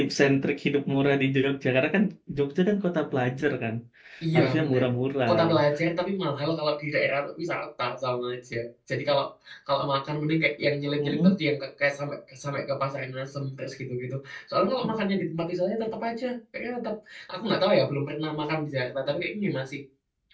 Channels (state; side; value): identical; both; correlation 1.00